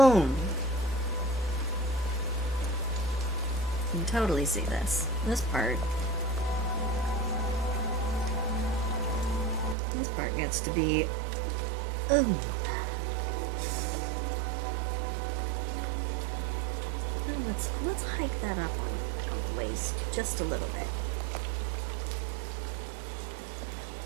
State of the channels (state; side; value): drops out; left; at 9.8 s